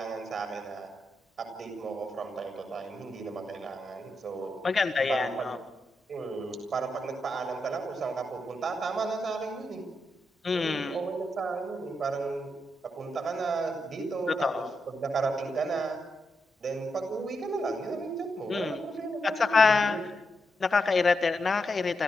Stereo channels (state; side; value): normal; both; correlation 0.84